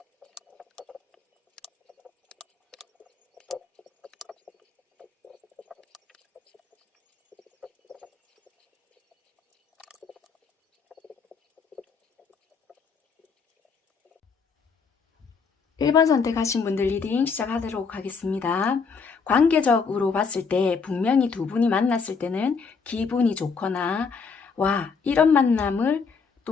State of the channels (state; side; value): quieter; right; 5.3 dB